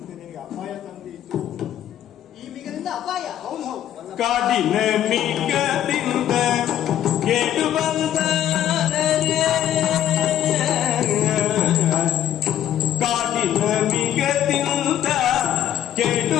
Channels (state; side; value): quieter; right; 11.3 dB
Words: ನಿನಗೆ ಅಪಾಯ ತಂದಿತ್ತು. ಈ ಮಿಗದಿಂದ ಅಪಾಯ. ಹೌದು ಹೌದು. ಕಾಡಿನ ಮಿಗದಿಂದ ಕೇಳು ಬಂದರೆ, ಕಾಡಿನ ಮಿಗದಿಂದ ಕೇಳು